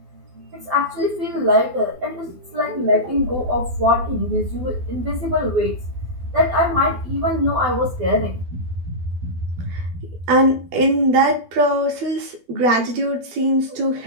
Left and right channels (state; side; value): late; left; 12 ms